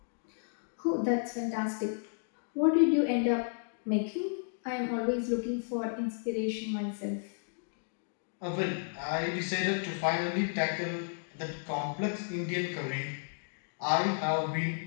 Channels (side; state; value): right; silent; digital silence